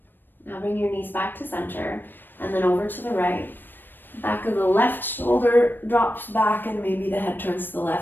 Now bring your knees back to center and then over to the right. Back of the left shoulder drops back and maybe the head turns to the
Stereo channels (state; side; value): late; right; 0.094 ms